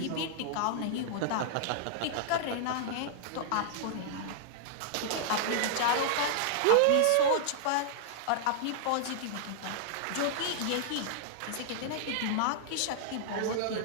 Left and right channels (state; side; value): different; both; correlation -0.01